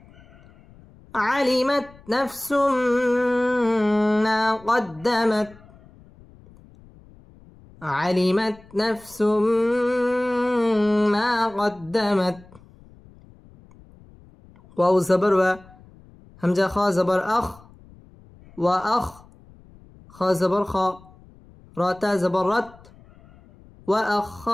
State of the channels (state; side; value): noise; left; rumble, 25 dB below the sound